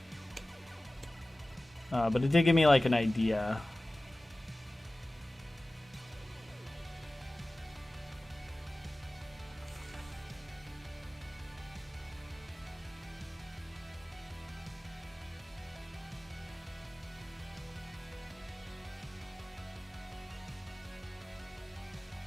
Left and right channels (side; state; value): both; normal; correlation 0.97